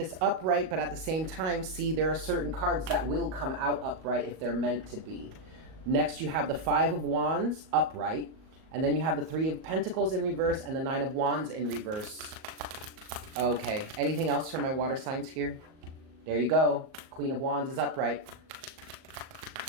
upright, but at the same time, see, there are certain cards that will come out upright if they're meant to be. Next, you have the 5 of Wands upright. And then you have the Three of Pentacles in reverse and the Nine of Wands in reverse. Okay, anything else for my water signs here? There you go. Queen of Wands is upright.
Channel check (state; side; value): late; left; 38 ms